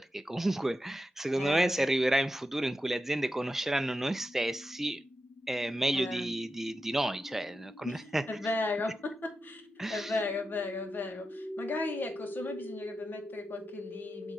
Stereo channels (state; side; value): normal; both; correlation 0.89